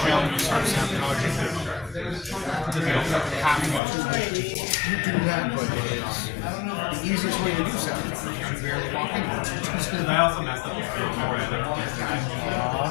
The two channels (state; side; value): drops out; right; at 3.8 s